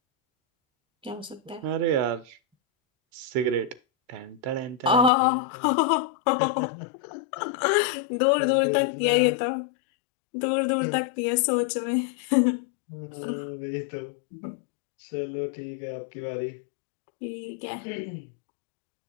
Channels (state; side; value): drops out; right; at 5.1 s